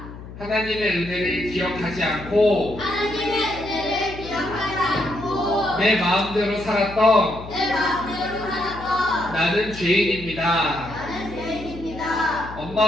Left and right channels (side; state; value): left; noise; hum, 14 dB below the sound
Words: 하나님의 은혜를 기억하지 않고 내 마음대로 살았던 나는 죄인입니다.